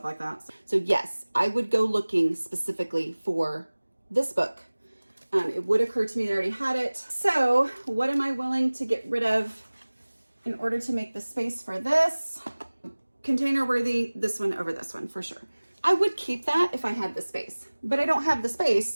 like that. So yes, I would go looking specifically for this book. It would occur to me that I already had it. So what am I willing to get rid of in order to make the space for this? Container worthy, this one over this one for sure. I would keep that if I had the space, but I don't have the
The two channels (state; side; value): inverted; both; correlation -1.00